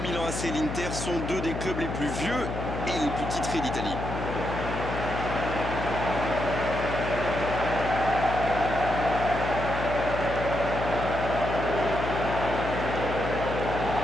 Milan AC et l'Inter sont deux des clubs les plus vieux et les plus titrés d'Italie.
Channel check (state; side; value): noise; left; hum, 5 dB below the sound